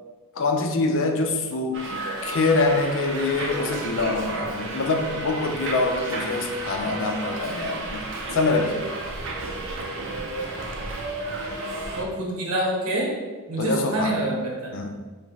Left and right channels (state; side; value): normal; both; correlation 0.05